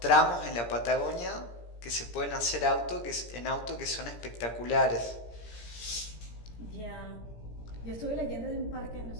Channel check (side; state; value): right; late; 17 ms